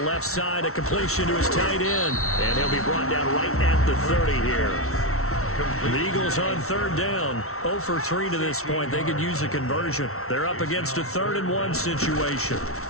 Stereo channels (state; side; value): late; right; 0.63 ms